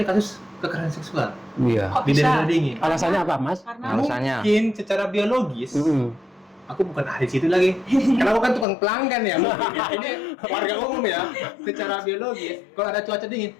kasus kekerasan seksual Iya. Kok di bisa? daerah dingin. Alasannya apa, Mas? Karena Alasannya. Mungkin secara biologis. Aku bukan ahli situ lagi. Karena aku kan tukang pelanggan ya. Mungkin ya. Ini warga umum ya. Secara biologis, kalau ada cuaca dingin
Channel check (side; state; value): right; drops out; at 8.7 s